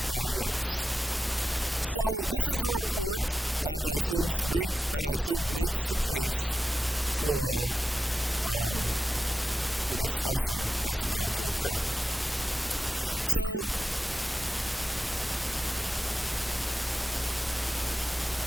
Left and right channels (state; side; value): normal; both; correlation 0.92